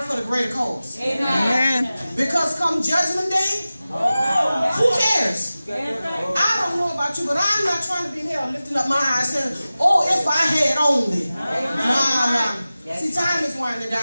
for the greater cause. Because come Judgment Day, who cares? I don't know about you, but I'm not trying to be in hell lifting up my eyes saying, oh, if I had only. Nah. See, time is winding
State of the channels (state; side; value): inverted; both; correlation -0.96